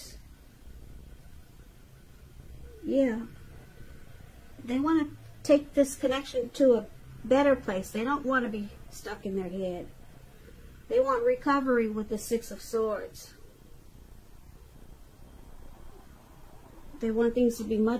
Yeah. They want to take this connection to a better place. They don't want to be stuck in their head. They want recovery with the Six of Swords. They want things to be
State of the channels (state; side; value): identical; both; correlation 1.00